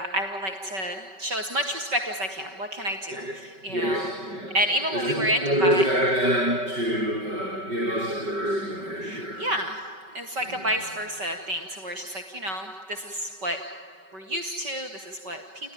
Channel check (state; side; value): late; left; 5.2 ms